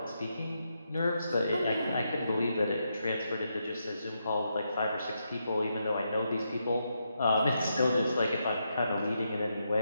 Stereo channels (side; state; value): both; inverted; correlation -0.82